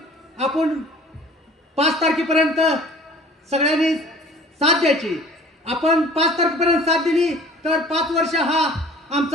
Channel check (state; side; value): normal; both; correlation 0.47